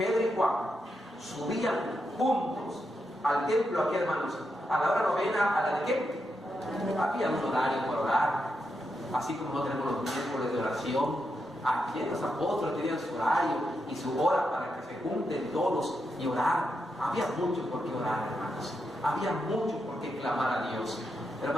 y Juan subían juntos al templo aquí, hermanos, a la hora novena, a la de qué? Había un horario para orar, así como no tenemos los miércoles de oración. Aquí los apóstoles tenían su horario y su hora para que se junten todos y orar. Había mucho por qué orar, hermanos. Había mucho por qué clamar a Dios.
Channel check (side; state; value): both; normal; correlation 0.84